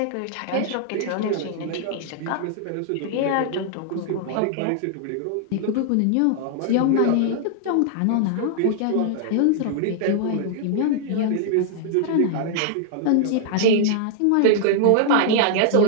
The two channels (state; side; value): different; both; correlation 0.00